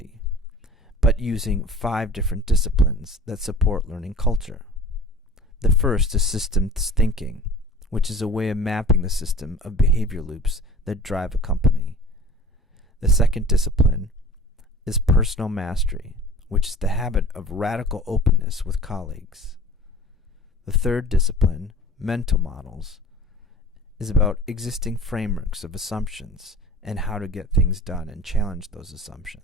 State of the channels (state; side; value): normal; both; correlation 0.41